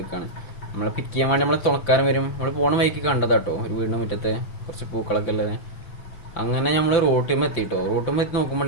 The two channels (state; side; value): late; right; 5.9 ms